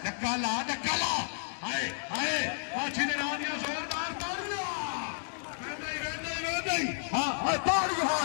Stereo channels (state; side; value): silent; right; digital silence